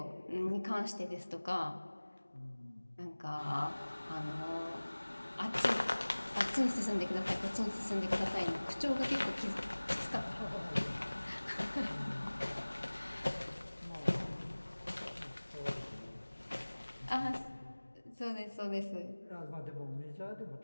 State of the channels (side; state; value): both; inverted; correlation -1.00